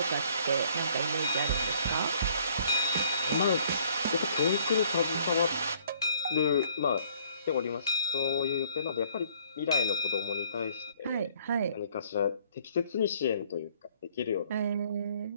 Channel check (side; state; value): both; inverted; correlation -0.60